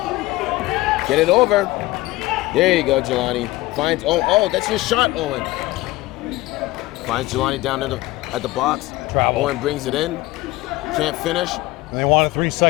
Get it over. There you go, Jelani. Finds, oh, that's your shot, Owen. Finds Jelani down at the box. Travel. Owen brings it in. Can't finish. And they wanted 3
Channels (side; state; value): right; quieter; 18.9 dB